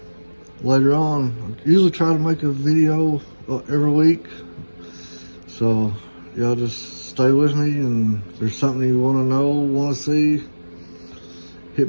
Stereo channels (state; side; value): inverted; both; correlation -1.00